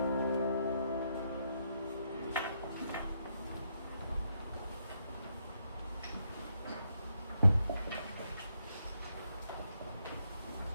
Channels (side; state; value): both; inverted; correlation -0.79